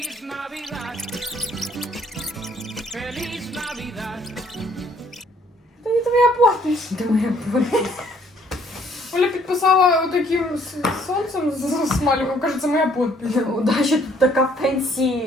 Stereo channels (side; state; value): both; normal; correlation 0.63